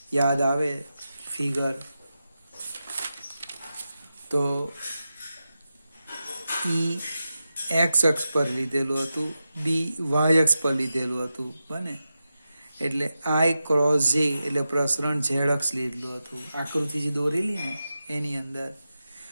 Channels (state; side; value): inverted; both; correlation -0.91